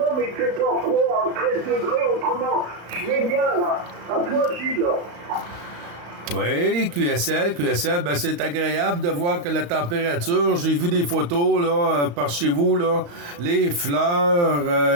mais il fait pas froid, à 13 degrés, autrement, je vais bien là. À toi, Gilles. Oui, QSL, ben c'est agréable de voir que la température, j'ai vu des photos là par chez vous là, les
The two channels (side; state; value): left; late; 35 ms